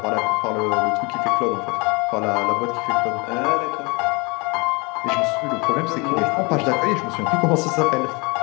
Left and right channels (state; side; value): quieter; right; 28.5 dB